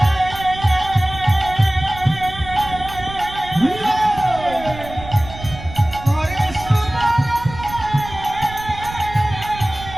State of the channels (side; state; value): right; noise; rumble, 13 dB below the sound